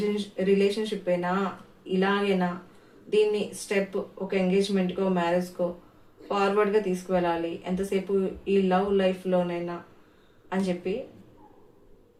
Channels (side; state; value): both; identical; correlation 1.00